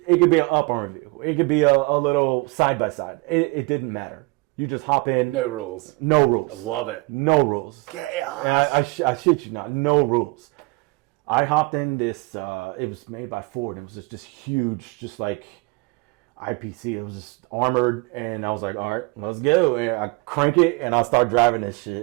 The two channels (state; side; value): quieter; left; 26.6 dB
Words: could be an up-armored vehicle. It could be a little side-by-side. It didn't matter. You just hop in. No rules. No rules. I love it. No rules. Chaos. I shit you not. No rules. I hopped in this. It was made by Ford. It was just this huge, just like IPC. It was just armored, and I was like, all right, let's go. And I crank it, and I start driving this